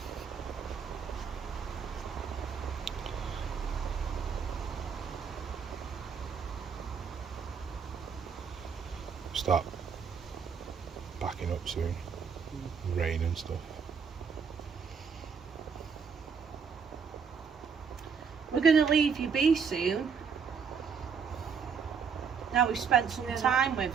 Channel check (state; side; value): quieter; left; 6.2 dB